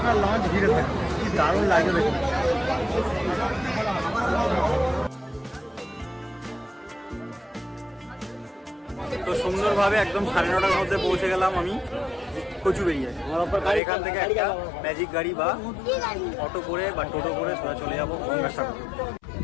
লঞ্চ ঘিরে থাকবে। কি দারুণ লাগবে দেখুন। তো সুন্দরভাবে একদম 9:30টার মধ্যে পৌঁছে গেলাম আমি কচুবেড়িয়ায়। আর এখান থেকে একটা ম্যাজিক গাড়ি বা অটো করে বা টোটো করে সোজা চলে যাবো গঙ্গাসাগর।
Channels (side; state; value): right; drops out; at 13.8 s